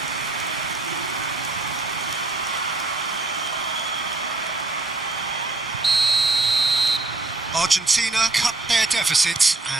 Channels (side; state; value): left; quieter; 3.2 dB